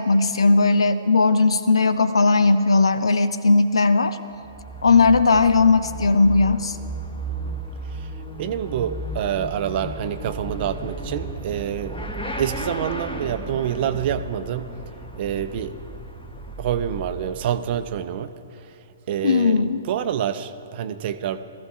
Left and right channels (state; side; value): inverted; both; correlation -0.73